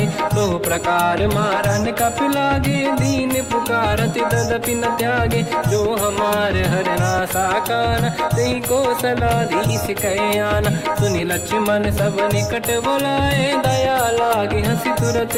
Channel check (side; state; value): both; identical; correlation 1.00